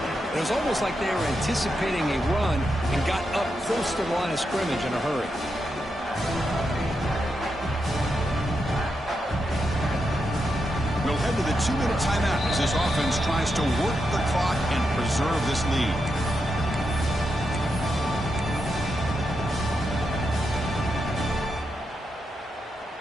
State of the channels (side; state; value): both; normal; correlation 0.85